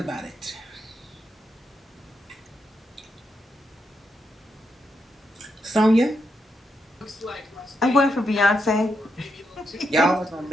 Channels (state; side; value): normal; both; correlation 0.82